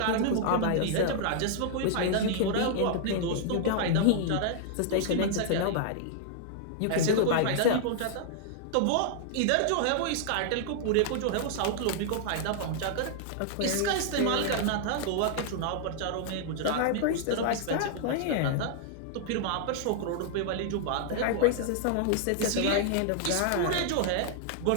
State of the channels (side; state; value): both; different; correlation -0.01